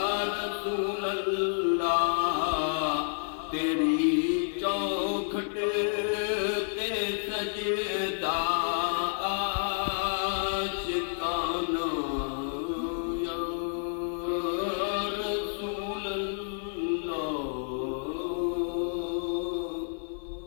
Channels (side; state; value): right; silent; 58 dB below the other